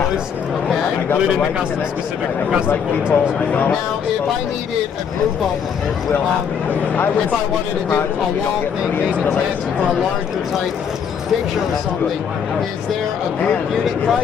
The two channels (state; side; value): quieter; right; 7.3 dB